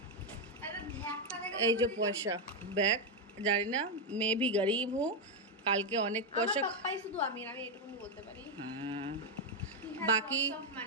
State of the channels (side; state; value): both; normal; correlation 0.03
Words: এই যে পয়সা, ব্যাগ, জানি না। मैं भी गरीब हूँ, কালকে অনেক পয়সা। শুধু আমি এটুকুনি বলতে পারি। हाँ, बाकी